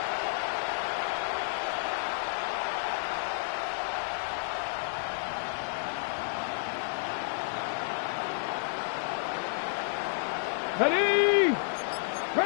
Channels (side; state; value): right; silent; digital silence